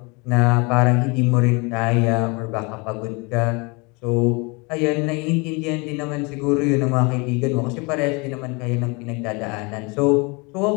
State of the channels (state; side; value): quieter; right; 29.1 dB